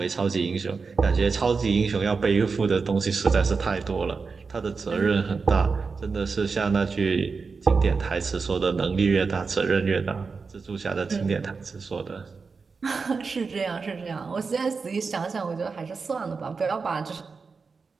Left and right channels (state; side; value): quieter; left; 4.8 dB